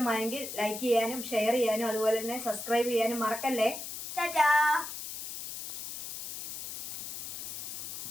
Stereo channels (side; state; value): left; noise; hiss, 7 dB below the sound